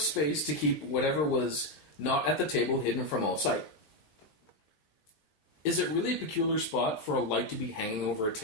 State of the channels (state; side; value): late; right; 20 ms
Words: space to keep whatever was not at the table hidden from all sight. Is it really a peculiar spot for a light to be hanging over a